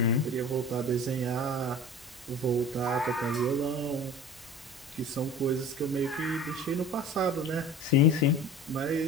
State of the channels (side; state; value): both; normal; correlation 0.38